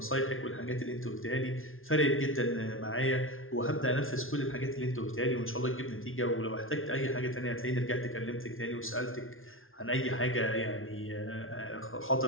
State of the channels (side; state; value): right; late; 0.60 ms